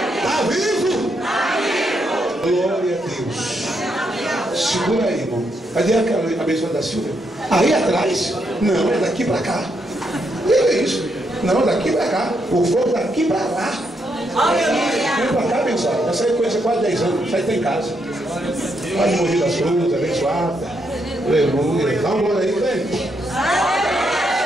Está vivo. Glória a Deus. Segura aí, irmão. Cadê a abençoada da Silvia? Aí atrás? Não, é daqui para cá. É isso. Não, daqui para cá. O fogo daqui para lá. Vem para cá, abençoada. Essa aí conhece há quase 10 anos. Isso aí está em casa. Pode morrer das cruzes, abençoada. Aleluia. Dá uma olhada aí, velho.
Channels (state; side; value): normal; both; correlation 0.78